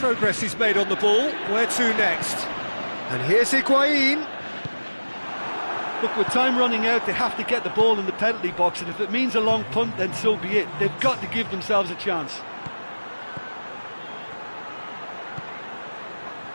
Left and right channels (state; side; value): inverted; both; correlation -1.00